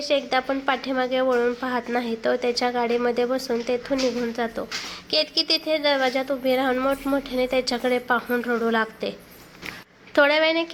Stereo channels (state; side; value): identical; both; correlation 1.00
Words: एकदा पण पाठीमागे वळून पाहत नाही. तो त्याच्या गाडीमध्ये बसून तेथून निघून जातो. केतकी तिथे दरवाजात उभी राहून मोठमोठ्याने त्याच्याकडे पाहून रडू लागते. थोड्या वेळाने